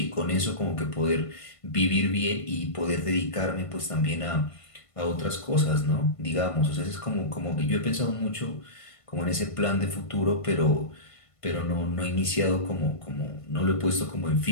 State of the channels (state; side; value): late; right; 1.5 ms